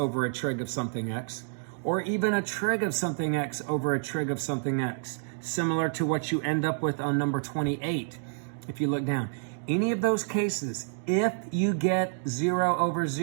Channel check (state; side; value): silent; left; digital silence